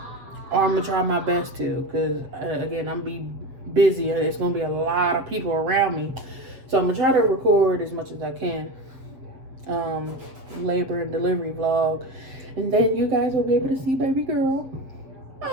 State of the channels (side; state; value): left; late; 7.7 ms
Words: Or I'm gonna try my best to, because again, I'm gonna be busy. It's gonna be a lot of people around me, so I'm gonna try to record as much as I can. Labor and delivery vlog, and then you guys will be able to see baby girl,